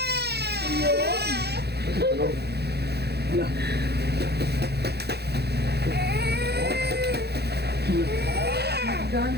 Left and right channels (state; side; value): late; left; 0.48 ms